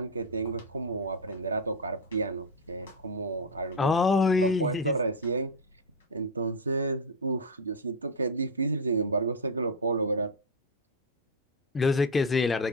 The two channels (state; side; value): normal; both; correlation 0.04